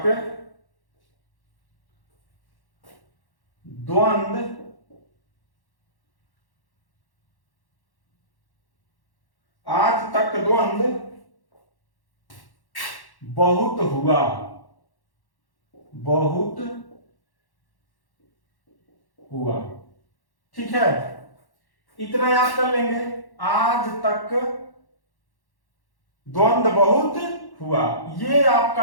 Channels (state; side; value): late; right; 1.1 ms